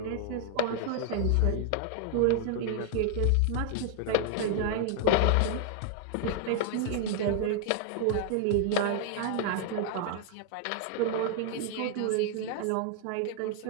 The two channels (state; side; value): different; both; correlation 0.00